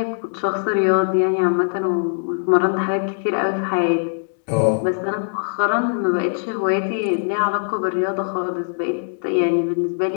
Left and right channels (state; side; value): silent; right; digital silence